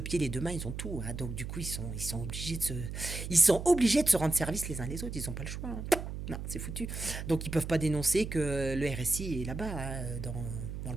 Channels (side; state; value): right; noise; hum, 6 dB below the sound